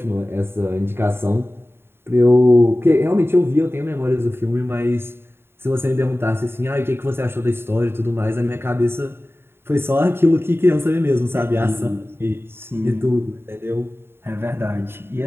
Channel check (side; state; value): left; late; 0.11 ms